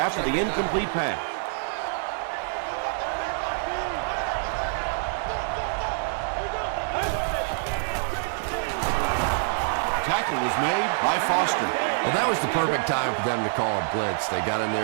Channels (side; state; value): left; silent; 59 dB below the other